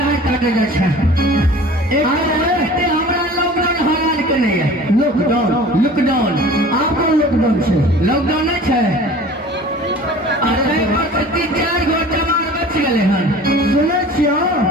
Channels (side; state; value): both; normal; correlation 0.43